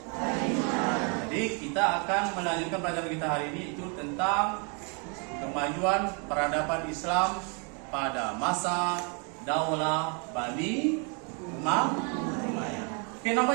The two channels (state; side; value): quieter; left; 36.7 dB